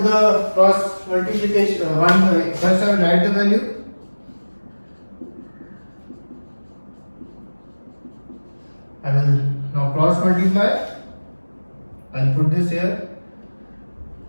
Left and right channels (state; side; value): inverted; both; correlation -1.00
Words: the cross multiplication. First I will write the value. I will now cross multiply. I will put this here.